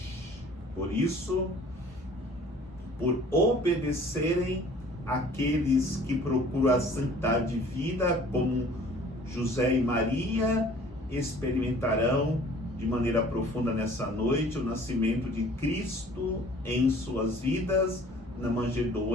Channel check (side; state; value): both; normal; correlation 0.51